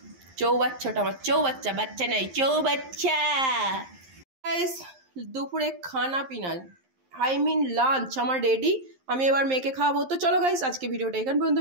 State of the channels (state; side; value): late; left; 11 ms